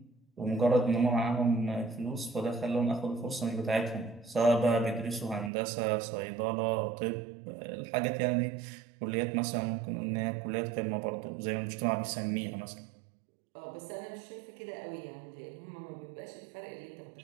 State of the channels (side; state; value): left; drops out; at 5.5 s